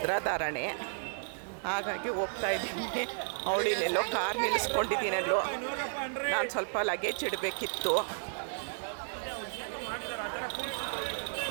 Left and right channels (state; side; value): silent; left; digital silence